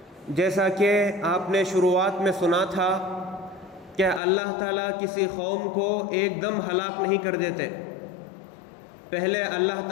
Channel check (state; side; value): drops out; right; at 4.2 s